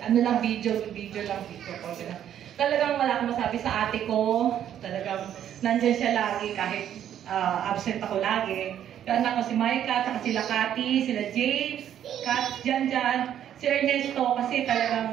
lang, video lang. Talagang wala akong masabi sa ate ko, talagang nandyan siya lagi kahit absent ako lagi. Yung anak ko si Micah, saka sila Cathy, sila James, Kat, Jan, si Ernesto, kasi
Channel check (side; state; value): left; quieter; 10.3 dB